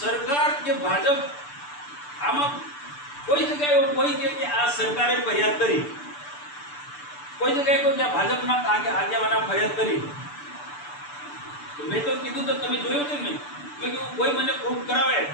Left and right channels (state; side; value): late; right; 6.8 ms